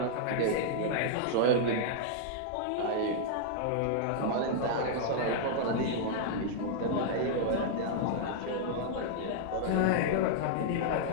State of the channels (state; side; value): different; both; correlation -0.01